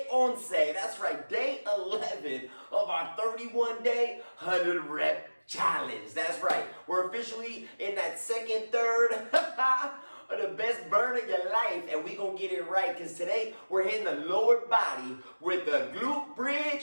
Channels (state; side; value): inverted; both; correlation -1.00